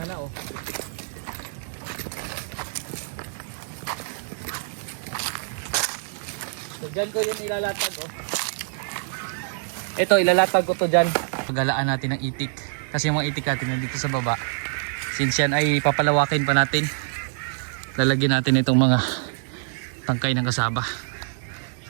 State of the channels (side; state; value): left; silent; digital silence